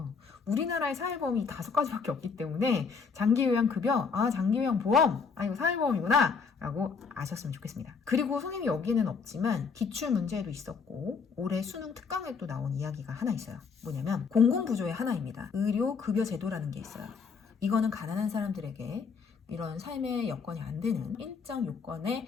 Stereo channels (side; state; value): right; quieter; 5.4 dB